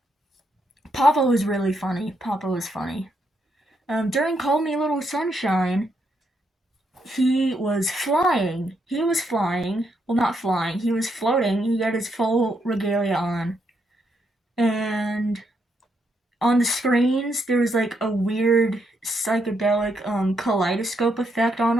Papa was really funny. Papa was funny. During Call Me Little Sunshine, he was flying. He was flying. Well, not flying. He was floating. He had his full regalia on. And on the screens, there was like a weird psychedelic kaleidoscope effect on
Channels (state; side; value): normal; both; correlation 0.78